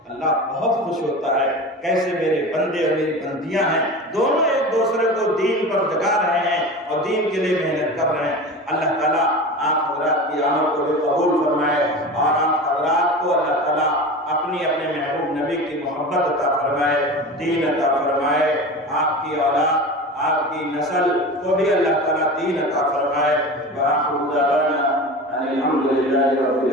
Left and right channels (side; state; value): both; normal; correlation 0.31